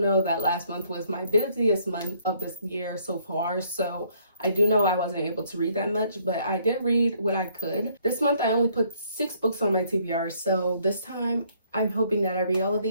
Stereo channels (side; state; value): both; inverted; correlation -0.65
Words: that last month was my busiest month of this year so far, so I do know I wasn't able to read that much, but I did read what I could. This month I only put 6 books on my TBR, so this time I'm hoping that I read all of